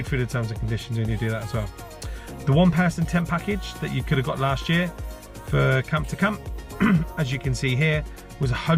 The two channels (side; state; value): both; identical; correlation 1.00